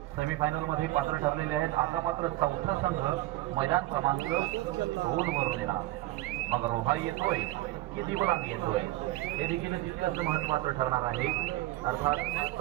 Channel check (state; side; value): quieter; left; 17.5 dB